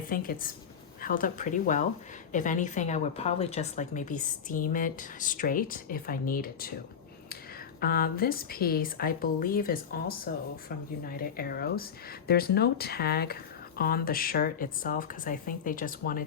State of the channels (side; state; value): right; quieter; 7.3 dB